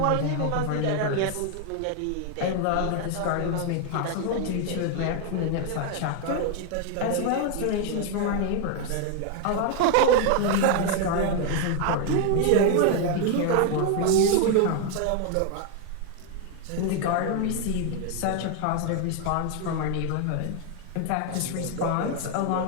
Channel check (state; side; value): different; both; correlation 0.00